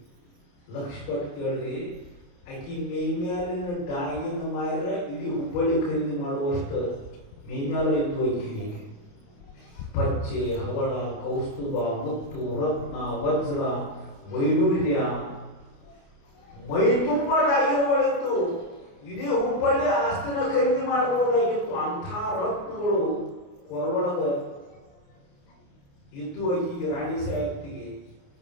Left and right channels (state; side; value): late; right; 28 ms